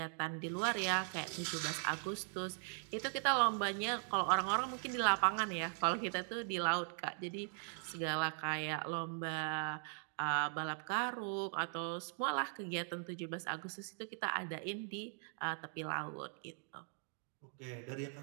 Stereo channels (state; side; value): silent; left; 51 dB below the other